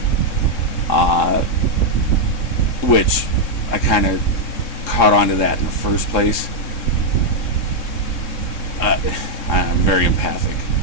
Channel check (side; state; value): right; late; 3.6 ms